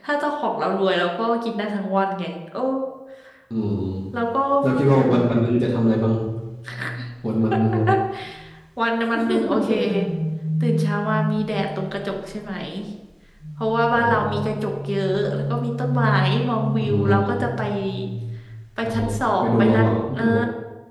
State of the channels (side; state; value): both; identical; correlation 1.00